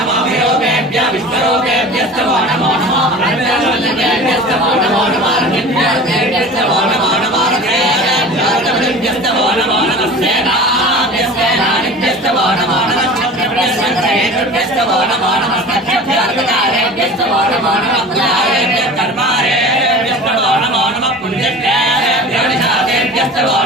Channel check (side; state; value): both; normal; correlation 0.38